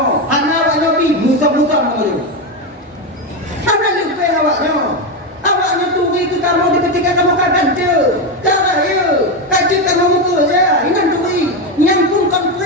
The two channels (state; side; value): normal; both; correlation 0.11